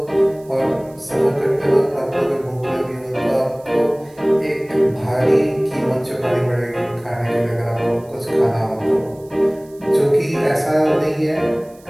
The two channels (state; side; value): noise; right; hiss, 28 dB below the sound